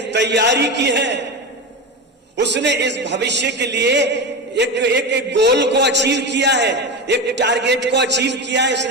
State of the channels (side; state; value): both; normal; correlation 0.21